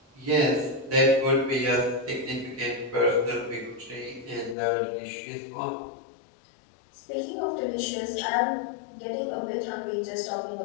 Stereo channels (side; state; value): right; drops out; at 4.5 s